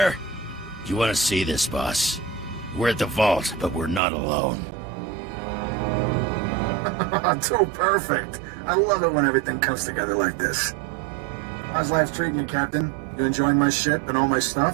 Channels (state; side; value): drops out; left; at 4.0 s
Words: You want to see this, boss? We're at the vault, but we're not alone. Too perfect. I love it when everything comes together like this. How's life treating you, Captain? You enjoying my ship and all my